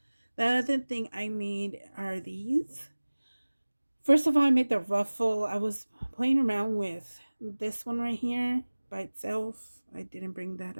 The other thing I made are these. First of all, I made the ruffle. I was playing around with this one right here by itself. I didn't bring that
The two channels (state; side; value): inverted; both; correlation -1.00